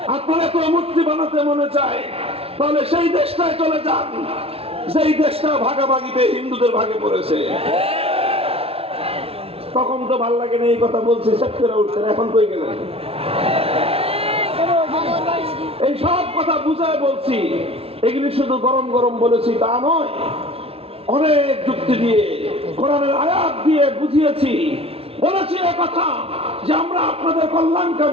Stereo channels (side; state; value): left; late; 0.28 ms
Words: আপনার এত মূর্তি বানাতে মনে চায়, তাহলে সেই দেশটায় চলে যান, যেই দেশটা ভাগাভাগিতে হিন্দুদের ভাগে পড়েছে। তখন তো ভাল লাগে না এই কথা বলছি, সেট করে উঠছেন, এখন কই গেলেন? এই সব কথা বুঝায় বলছি, এগুলি শুধু গরম গরম বলেছি তা নয়, অনেক যুক্তি দিয়ে, কোরআনের আয়াত দিয়ে বুঝিয়েছি। বলেছি কথা যে আমরা আপনাদের